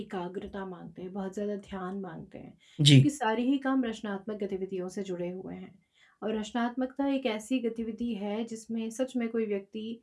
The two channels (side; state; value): both; identical; correlation 1.00